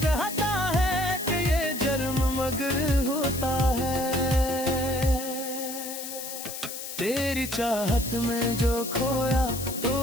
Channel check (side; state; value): left; noise; hiss, 8 dB below the sound